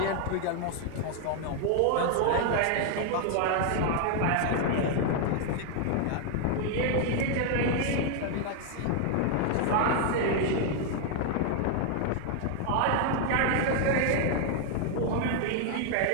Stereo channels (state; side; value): different; both; correlation 0.00